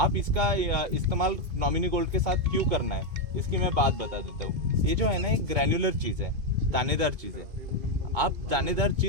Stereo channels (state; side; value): late; left; 2.5 ms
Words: इसका इस्तेमाल नॉमिनी गोल्ड के साथ क्यों करना है, इसकी मैं बात बता देता हूँ। ये जो है ना एक ग्रैन्युलर चीज है, दानेदार चीज है। आप दानेदार